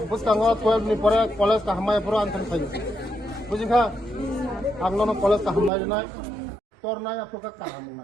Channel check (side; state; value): left; drops out; at 5.7 s